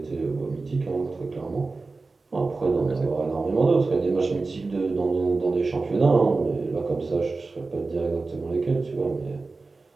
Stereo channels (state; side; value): quieter; left; 3.8 dB